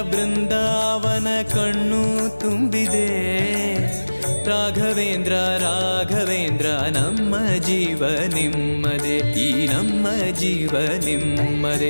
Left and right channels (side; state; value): both; inverted; correlation -1.00